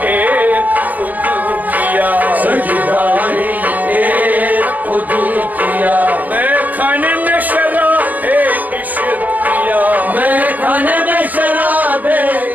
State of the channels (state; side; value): late; left; 0.082 ms